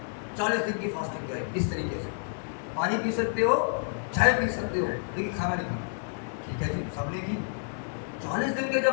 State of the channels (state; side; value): silent; right; 58 dB below the other